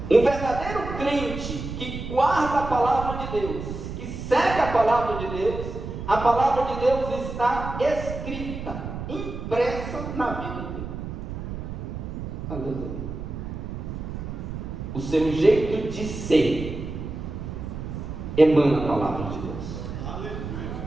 Um verdadeiro crente que guarda a palavra de Deus, que segue a palavra de Deus, a palavra de Deus está escrita, impressa na vida dele. Aleluia. O seu jeito de ser emana a palavra de Deus.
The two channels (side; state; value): right; noise; rumble, 7 dB below the sound